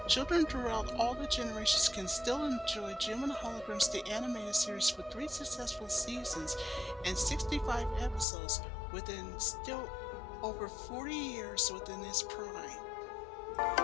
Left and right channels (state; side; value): drops out; right; at 8.2 s